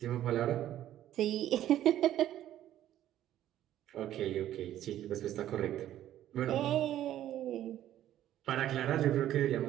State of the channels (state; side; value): quieter; left; 12.3 dB